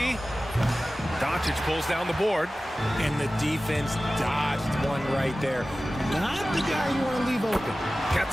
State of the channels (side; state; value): both; normal; correlation 0.96